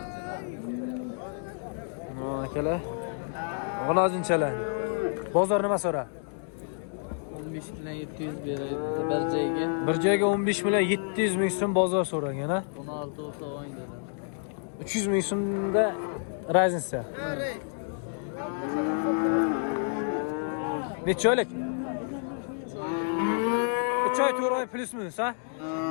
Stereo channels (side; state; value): right; silent; 59 dB below the other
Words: Akalar. G'unajinchalar. Bozor nima so'ra? 15 bilan 700 beradi bir joyga. Bir joyga 15 million 700 ming so'm bozor so'ragan ha. 16 olsa o'ydi. 300 ming so'mda Raznica. Necha oylik? 3 oy 4 oy plus minus ha?